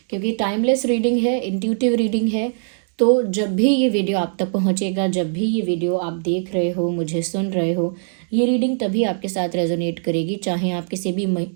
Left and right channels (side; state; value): left; silent; digital silence